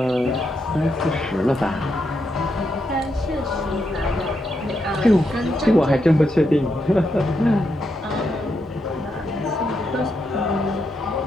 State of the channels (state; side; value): normal; both; correlation 0.82